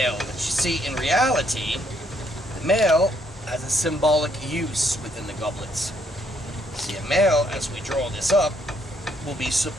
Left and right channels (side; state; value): both; normal; correlation 0.71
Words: but you see, in reality, the male has a symbolic use within the goblets. See, a male, as we draw this up, will be